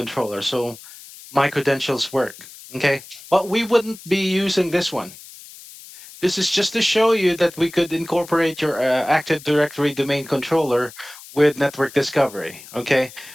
So my credentials work. Okay, but we wouldn't be using this one. This is just to show you that we could incorporate your Active Directory domain controller with network discovery. Okay,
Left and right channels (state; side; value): noise; left; hiss, 18 dB below the sound